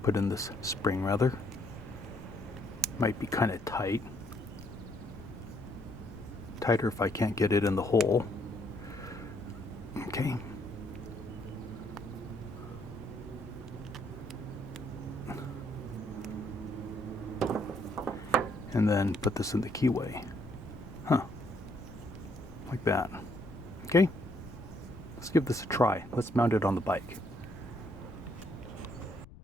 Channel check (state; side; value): noise; left; rumble, 18 dB below the sound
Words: put in this spring rather. Might be kind of tight. Tighter if I can't get it in the hole. Okay. And then put this in the keyway. Huh. Like that. Okay. Let's give this a try. Let's mount it on the bike.